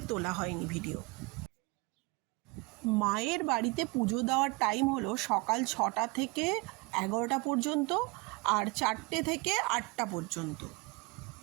তোলা হয়নি ভিডিও। মায়ের বাড়িতে পুজো দেওয়ার টাইম হলো সকাল 6টা থেকে 11টা পর্যন্ত, আর 4টে থেকে 8টা পর্যন্ত।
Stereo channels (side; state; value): left; quieter; 26.1 dB